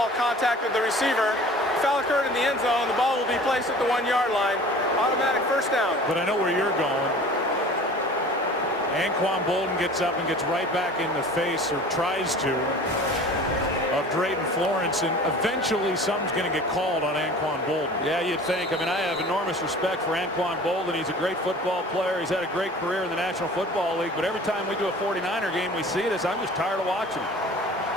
contacted the receiver. Foul occurred in the end zone. The ball will be placed at the 1-yard line. Automatic 1st down. But I know where you're going. Anquan Boldin gets up and gets right back in the face, or tries to, of Drayton Florence, and eventually something's going to get called on Anquan Boldin. Yeah, you'd think. I mean, I have enormous respect for Anquan Boldin. He's a great football player. He's had a great career in the National Football League, but every time we do a 49er game, we see this. I'm just tired of watching.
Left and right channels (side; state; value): both; normal; correlation 0.43